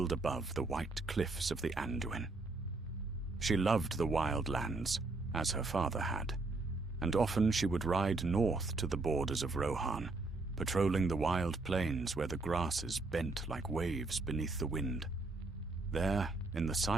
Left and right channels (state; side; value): quieter; left; 3.4 dB